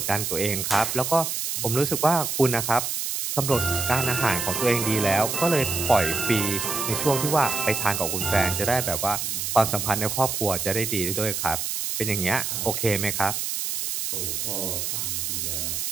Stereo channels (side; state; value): right; noise; hiss, 2 dB below the sound